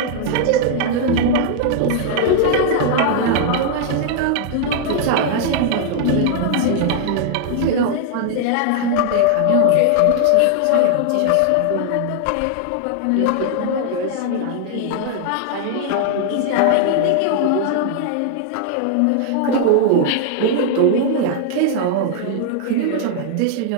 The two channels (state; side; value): different; both; correlation 0.00